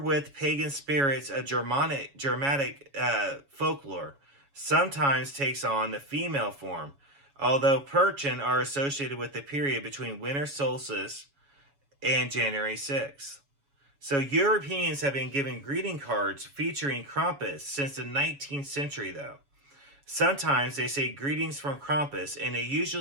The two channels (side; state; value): left; late; 7.2 ms